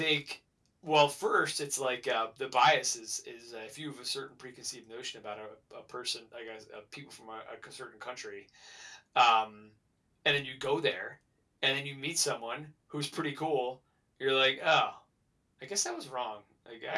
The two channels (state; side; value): identical; both; correlation 1.00